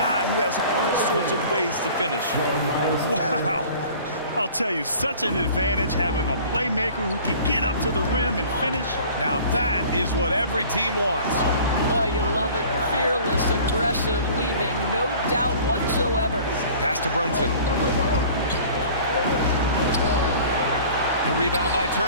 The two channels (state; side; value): inverted; both; correlation -0.46